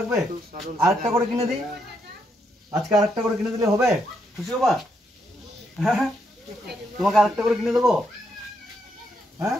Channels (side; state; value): both; normal; correlation 0.77